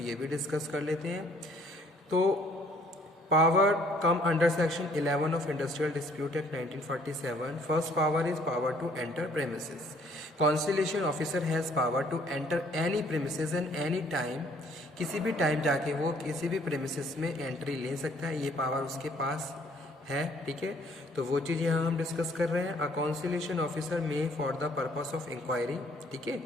भी डिस्कस कर लेते हैं। तो power come under section 11 of industrial dispute act 1947। First power is power to enter premises. Conciliation officer has power to enter any premises and any time, किसी भी टाइम जाके वो किसी भी प्रेमिसेस में एंट्री ले सकता है, ये पावर उसके पास है। ठीक है, तो वो चीज़ यहाँ हम डिस्कस कर रहे हैं। A conciliation officer may for the purpose of inquiry, ठीक है,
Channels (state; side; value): normal; both; correlation 0.61